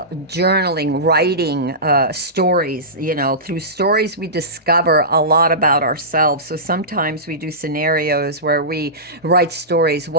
writing, stories. You know, through stories we discover a lot about ourselves. So sometimes we do scenarios where we write stories.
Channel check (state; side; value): normal; both; correlation -0.19